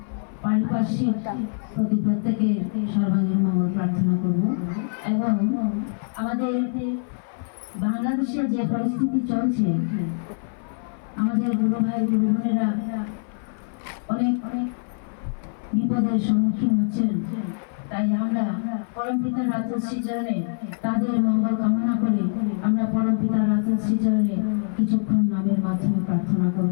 পারিপার্শ্বিক প্রতি প্রত্যেকে সর্বাঙ্গীন মঙ্গল প্রার্থনা করব। এবং আমাদের বাংলাদেশে যে পরিস্থিতি চলছে, আমাদের গুরু ভাই গুরু বোনেরা অনেক অনেক বিপদের সম্মুখীন হচ্ছেন। তাই আমরা পরম পিতার রাজশ্রী চরণে তাদের মঙ্গল কামনা করে আমরা পরম পিতার রাজশ্রী চরণে কিছুক্ষণ নামের মাধ্যমে প্রার্থনা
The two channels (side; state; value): right; silent; 57 dB below the other